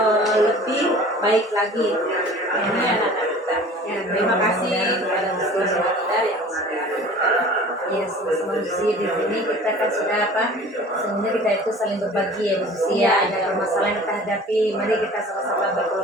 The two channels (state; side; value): normal; both; correlation 0.44